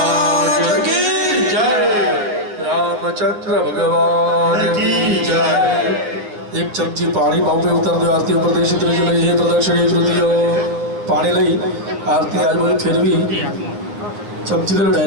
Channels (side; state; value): left; late; 9.4 ms